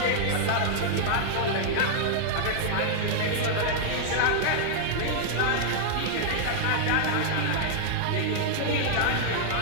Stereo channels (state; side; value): different; both; correlation -0.01